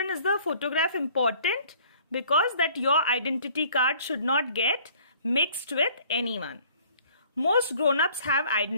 is the photograph important? Because that your identity card should not get mixed with anyone. Most grown-ups have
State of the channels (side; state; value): both; inverted; correlation -0.55